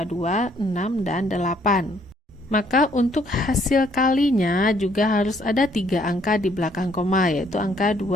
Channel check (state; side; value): normal; both; correlation 0.66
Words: 2, 6, dan 8. Maka untuk hasil kalinya juga harus ada 3 angka di belakang koma, yaitu angka